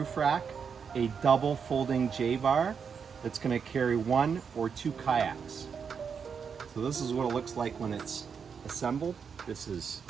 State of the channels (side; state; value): left; quieter; 6.4 dB